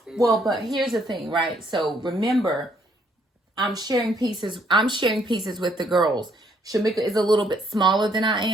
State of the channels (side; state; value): both; normal; correlation 0.68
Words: Well, but here's the thing, right? So remember, I'm sharing pieces with the girls. Shakema is a little bit smaller than I